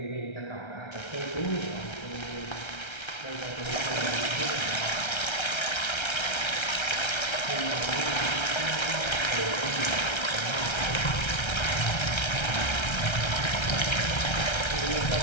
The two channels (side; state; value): right; late; 1.3 ms